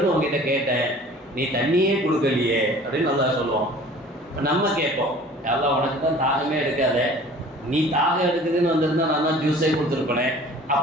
உங்ககிட்ட கேட்டேன், நீ தண்ணியே கொடுக்கலையே அப்படின்னு அல்லாஹ் சொல்லுவான். நம்ம கேட்போம், அல்லாஹ் உனக்கு தான் தாகமே எடுக்காத, நீ தாகம் எடுக்குதுன்னு வந்திருந்தா நான் தான் ஜூஸே கொடுத்துருப்பேனே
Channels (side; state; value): both; normal; correlation 0.47